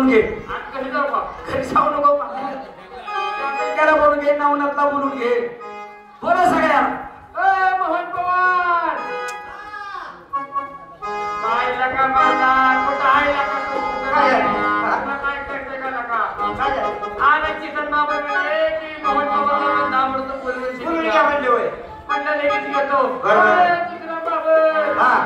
घे आज घरी जाऊ का घरी जाऊ नको त्याला बोलून घे नवनाथला बोलून घे बोला सगळ्या मोहन पवार काय लका माझा कुठं आहे लका तू काय करते का लका आला चिकन बाबा म्हणे की मोहन पवारला नाव म्हणतो बोलून काय म्हणले होय म्हणलं लगेच घेतो चिकन बाबा हा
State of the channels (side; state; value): both; identical; correlation 1.00